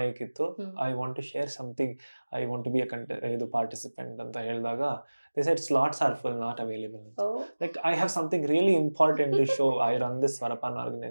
ಇತ್ತು. I want to share something, I want to be ಇದು ಪಾರ್ಟಿಸಿಪೆಂಟ್ ಅಂತ ಹೇಳಿದಾಗ they said slots are full, not available. Like I have something really important to show. I run this Swarapana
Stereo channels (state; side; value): inverted; both; correlation -1.00